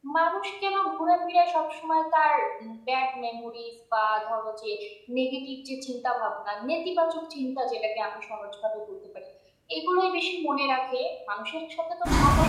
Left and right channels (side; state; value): both; identical; correlation 1.00